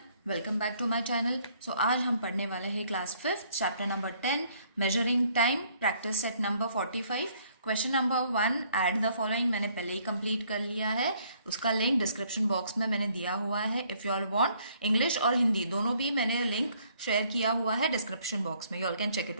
welcome back to my channel. So आज हम पढ़ने वाले हैं class 5 chapter number 10 measuring time practice set number 45। Question number 1 add the following मैंने पहले ही कंप्लीट कर लिया है। उसका लिंक डिस्क्रिप्शन बॉक्स में मैंने दिया हुआ है। If you all want English और हिंदी दोनों भी मैंने लिंक शेयर किया हुआ है डिस्क्रिप्शन बॉक्स में, you all can check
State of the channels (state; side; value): inverted; both; correlation -0.64